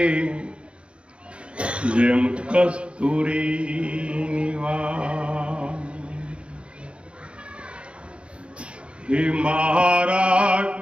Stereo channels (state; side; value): late; left; 0.058 ms